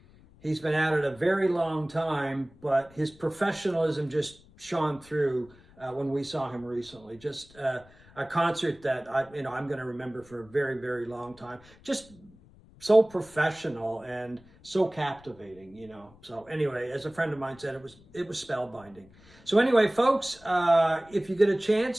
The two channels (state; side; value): noise; left; rumble, 25 dB below the sound